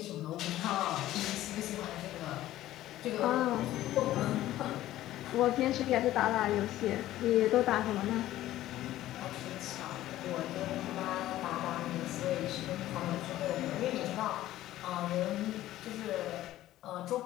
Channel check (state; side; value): quieter; right; 14.5 dB